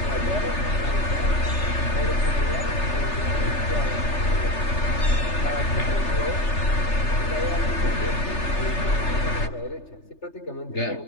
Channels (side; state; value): right; late; 3.3 ms